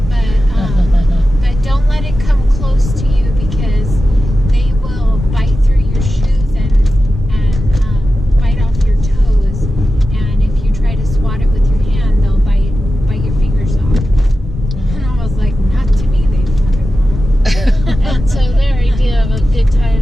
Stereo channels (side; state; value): both; normal; correlation 0.92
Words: but don't let it come close to you because they will bite through your shoes and bite off your toes. And if you try to swat it with your hand, they'll bite your fingers off. And I was like, not to me, they fucking won't. and so their idea of a good time